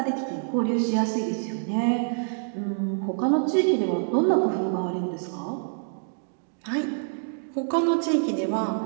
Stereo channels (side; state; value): left; silent; digital silence